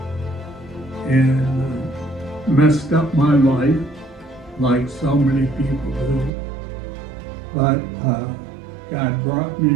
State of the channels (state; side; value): drops out; left; at 6.3 s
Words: and messed up my life like so many people do. But God brought